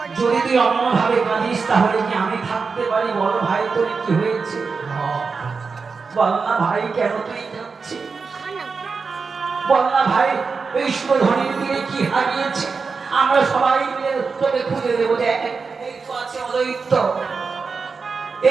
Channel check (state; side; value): quieter; left; 4.9 dB